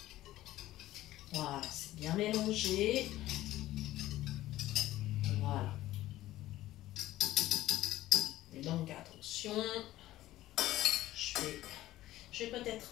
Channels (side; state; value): right; quieter; 15.3 dB